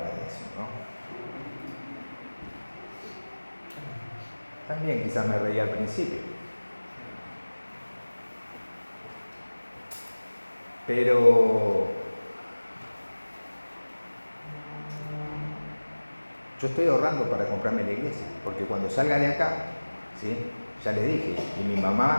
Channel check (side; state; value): both; inverted; correlation -1.00